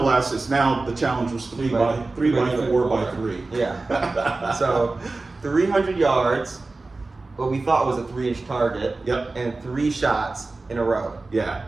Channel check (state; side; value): quieter; left; 3.4 dB